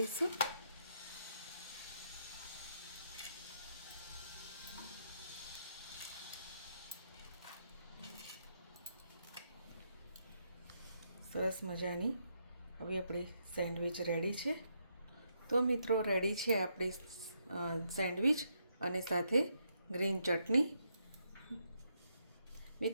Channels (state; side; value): inverted; both; correlation -0.78